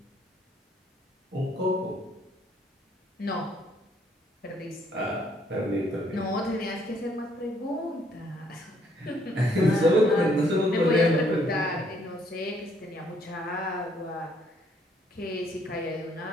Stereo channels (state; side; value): normal; both; correlation 0.67